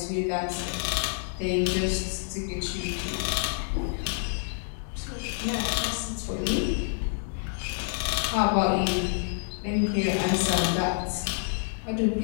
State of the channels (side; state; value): right; silent; digital silence